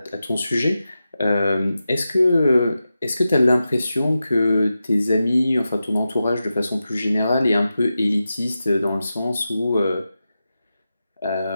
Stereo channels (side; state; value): both; inverted; correlation -0.91